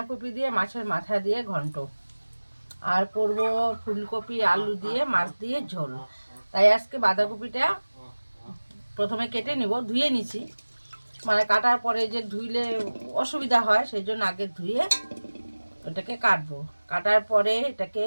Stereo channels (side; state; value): both; inverted; correlation -1.00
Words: দিয়ে মাছের মাথা দিয়ে ঘন্ট, আর করব ফুলকপি আলু দিয়ে মাছ দিয়ে ঝোল। তাই আজকে বাঁধাকপিটা প্রথমে কেটে নিব, ধুয়ে নিছি। মানে কাটার পরে যে ধুইলে অসুবিধা হয়, সেই জন্য আগে ধুয়ে ওটাকে কাটবো। কাটার পরে এটাকে